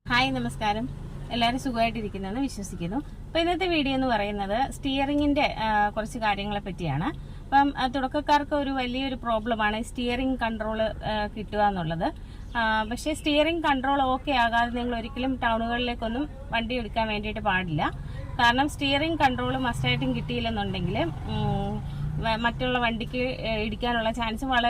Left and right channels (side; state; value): both; identical; correlation 1.00